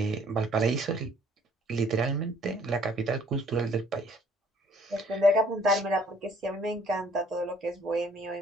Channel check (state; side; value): normal; both; correlation 0.59